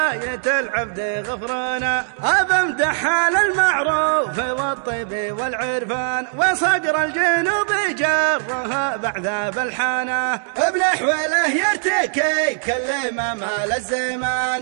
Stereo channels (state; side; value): silent; left; digital silence